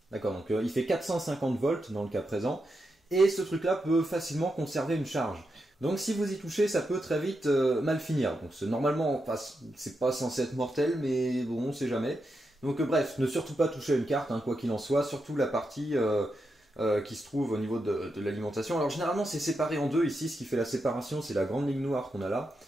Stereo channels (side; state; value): both; normal; correlation 0.86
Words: D'accord, donc il fait 450 volts dans le cas présent, et ce truc-là peut facilement conserver une charge. Donc si vous y touchez, ça peut très vite mal finir. Donc normalement, enfin, c'est pas censé être mortel, mais bon, on sait jamais. Donc bref, ne surtout pas toucher à une carte, hein, quoi qu'il en soit, surtout la partie qui se trouve au niveau de l'alimentation. Alors généralement, c'est séparé en deux ici, ce qui fait la séparation, c'est la grande ligne noire qu'on a là.